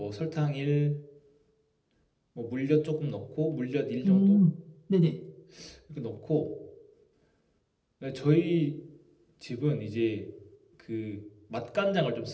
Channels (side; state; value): both; identical; correlation 1.00